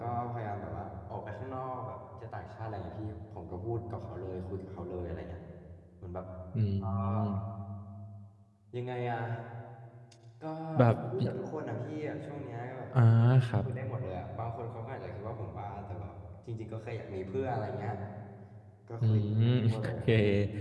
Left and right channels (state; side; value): identical; both; correlation 1.00